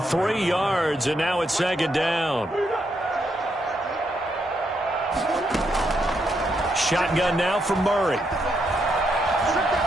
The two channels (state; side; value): normal; both; correlation 0.79